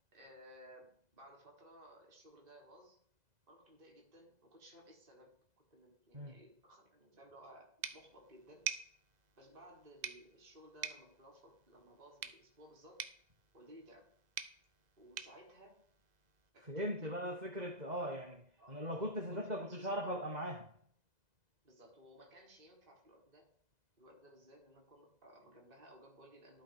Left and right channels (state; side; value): late; left; 2.0 ms